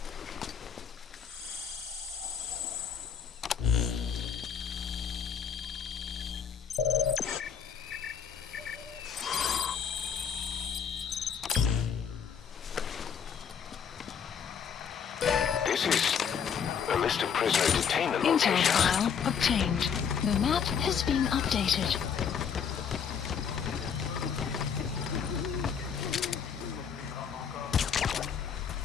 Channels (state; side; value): quieter; right; 7.2 dB